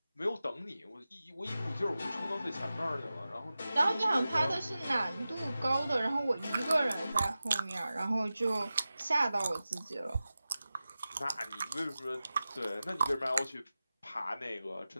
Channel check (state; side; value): inverted; both; correlation -0.95